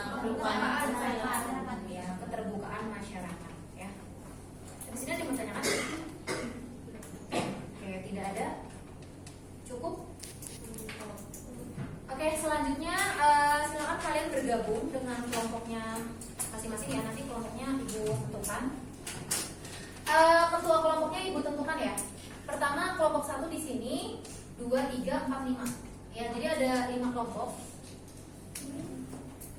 ya, keterbukaan masyarakat ya. Di sini ada yang bertanyakan? Oke, tidak ada. Cukup. Oke, selanjutnya silakan kalian bergabung Ibu tentukan ya. Pertama kelompok 1 di sini, 2, 3, 4, 5. Ya, jadi ada 5 kelompok.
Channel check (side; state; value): both; identical; correlation 1.00